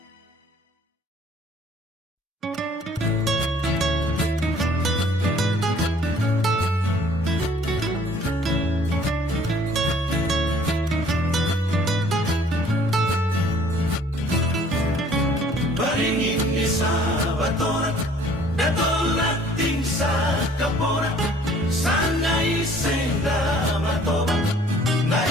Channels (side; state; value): both; normal; correlation 0.56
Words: Baringin ni sa batoran, datulak ting sa kaporan, sana isenda matoban, na